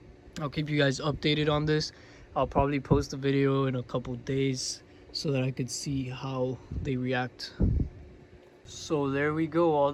I'll keep you guys updated on this. I'll probably post a video in a couple days so that I could see how they react. So there we go. All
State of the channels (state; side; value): identical; both; correlation 1.00